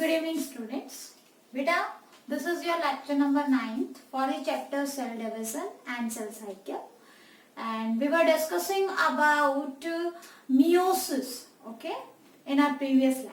Good evening, students. Beta, this is your lecture number 9 for the chapter cell division and cell cycle. And we were discussing about meiosis, okay, in our previous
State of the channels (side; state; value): both; identical; correlation 1.00